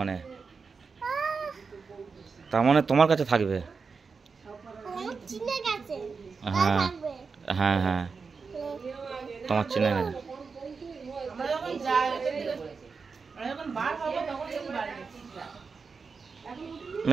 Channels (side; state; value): left; quieter; 5.0 dB